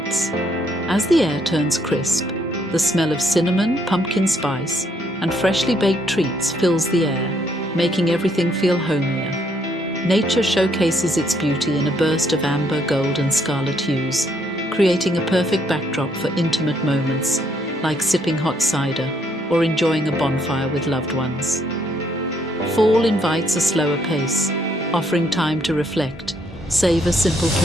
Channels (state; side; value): normal; both; correlation 0.71